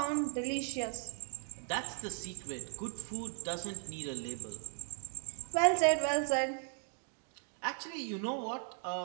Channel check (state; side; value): silent; left; 53 dB below the other